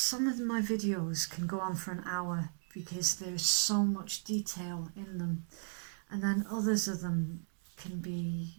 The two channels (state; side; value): silent; left; digital silence